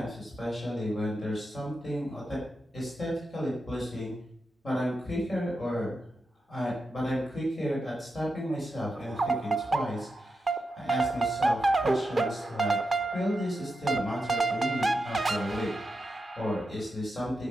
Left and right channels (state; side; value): normal; both; correlation 0.88